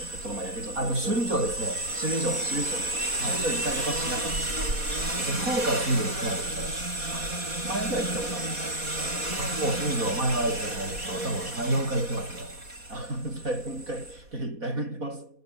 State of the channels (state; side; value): late; left; 4.2 ms